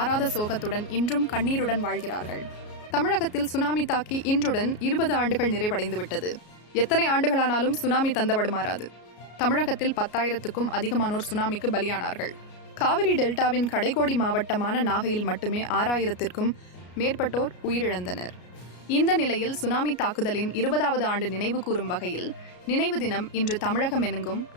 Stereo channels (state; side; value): late; right; 33 ms